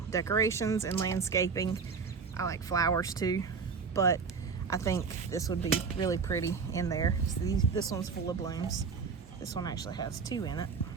decorations and landscaping. I like flowers too, but I think this would be really pretty in there. So this one's full of blooms. This one actually has 2 in it.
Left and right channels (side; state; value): left; quieter; 5.4 dB